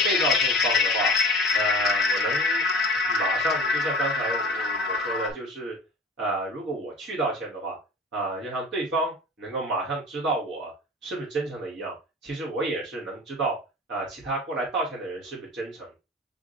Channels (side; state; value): both; normal; correlation 0.39